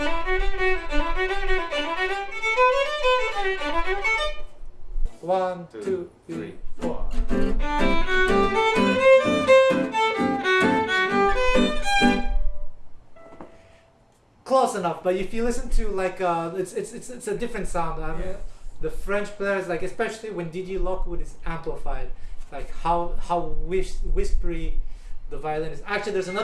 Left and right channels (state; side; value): identical; both; correlation 1.00